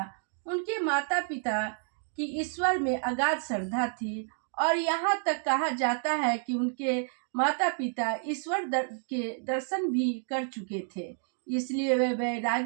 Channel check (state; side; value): silent; left; 58 dB below the other